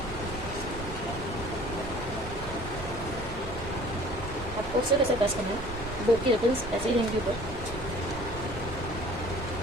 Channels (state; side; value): normal; both; correlation 0.49